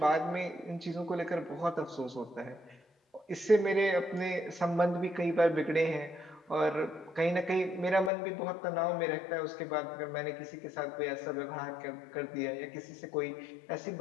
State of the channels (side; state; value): right; drops out; at 8.1 s